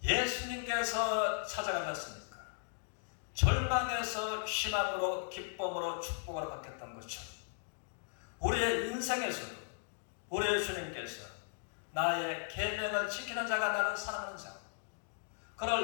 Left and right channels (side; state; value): right; silent; digital silence